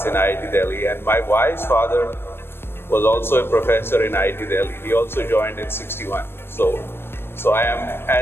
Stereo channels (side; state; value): right; late; 0.11 ms